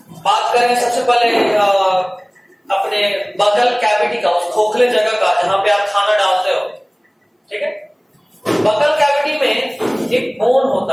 बात करें सबसे पहले अपने बगल कैविटी का, उस खोखले जगह का जहां पे आप खाना डालते हो, ठीक है। बगल कैविटी में एक बोन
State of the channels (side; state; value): both; identical; correlation 1.00